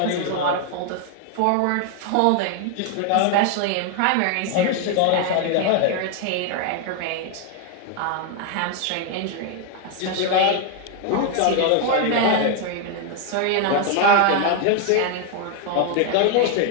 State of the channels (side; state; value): both; different; correlation 0.00